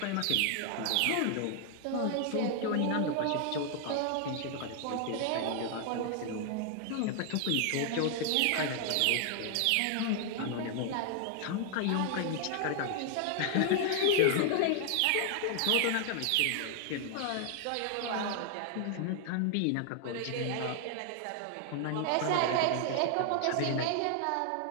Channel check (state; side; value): different; both; correlation 0.00